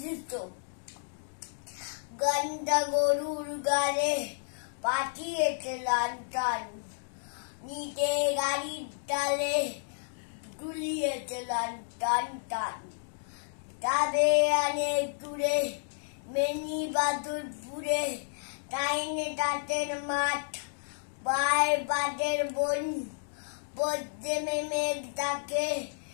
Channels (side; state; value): right; silent; digital silence